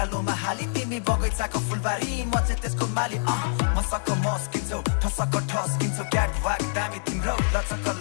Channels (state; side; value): silent; right; digital silence